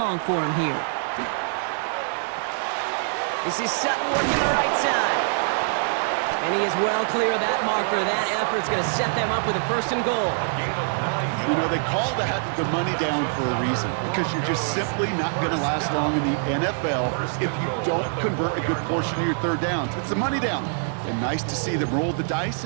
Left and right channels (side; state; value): left; silent; digital silence